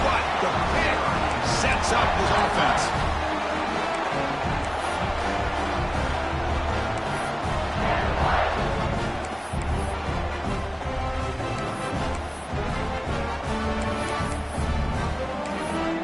but the pick sets up his offense.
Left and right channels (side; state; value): both; identical; correlation 1.00